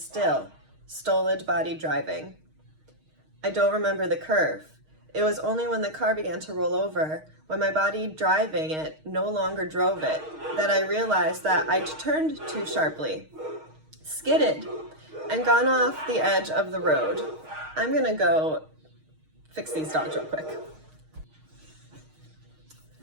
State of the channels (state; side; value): late; left; 6.4 ms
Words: stolid body driving. I don't remember the curve. It was only when the car began to roll over, when my body driving it no longer drove it, that I realized that I'd turned too sharply, skidded, and gone off the edge of the road. I'm gonna go fix these dogs real quick.